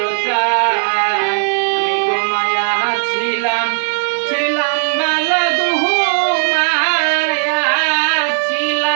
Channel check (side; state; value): left; silent; 69 dB below the other